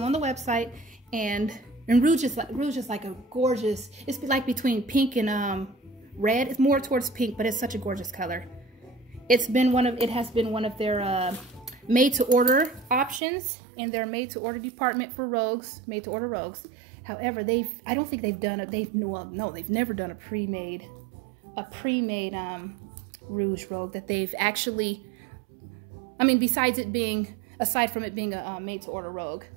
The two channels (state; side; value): drops out; left; at 13.2 s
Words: on the website, and Rouge is like a gorgeous, it's like between pink and red. It's more towards pink, but it's such a gorgeous color. It has been one of their made to order options in their made to order department for Rogues, made to order Rogues. However, I don't think they've done it. They've never done a pre-made Rouge Rogue that they've actually, I mean, aside from it being a made to order Rogue.